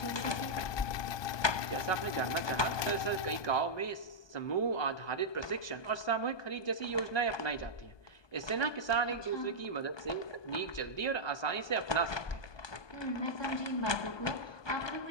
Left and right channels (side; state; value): right; late; 1.2 ms